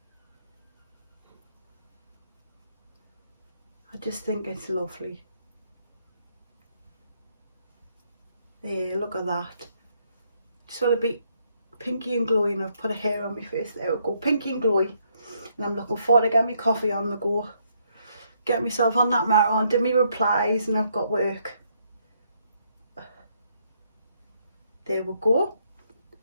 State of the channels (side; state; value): both; inverted; correlation -0.73